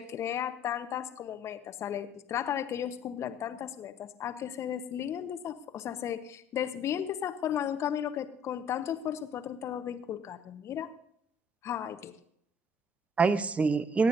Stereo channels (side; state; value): both; normal; correlation 0.59